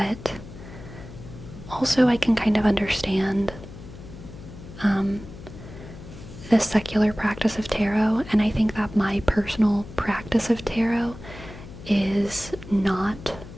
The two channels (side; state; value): left; noise; hum, 15 dB below the sound